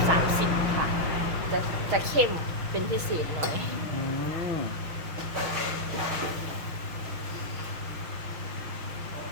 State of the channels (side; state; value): left; late; 6.1 ms